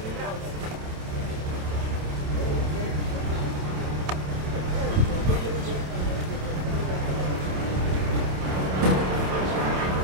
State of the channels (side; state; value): left; late; 27 ms